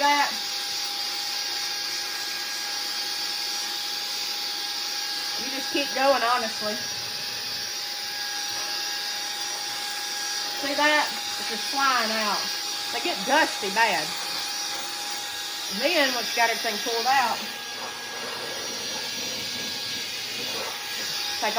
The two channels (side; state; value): both; identical; correlation 1.00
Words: that? You just keep going, honestly. See that? It's just flying out. They get dusty bad. And then once you got everything pulled out, take